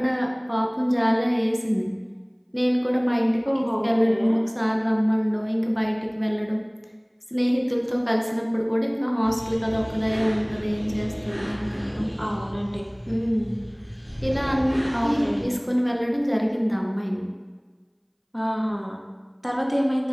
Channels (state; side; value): identical; both; correlation 1.00